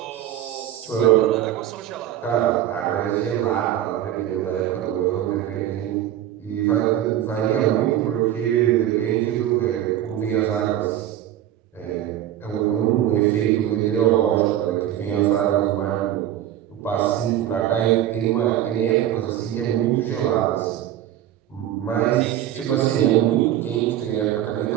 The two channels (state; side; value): quieter; left; 12.1 dB